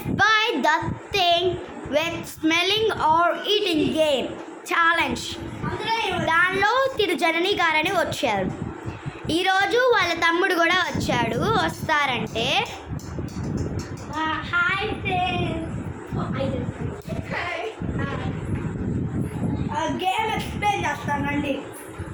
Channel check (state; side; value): identical; both; correlation 1.00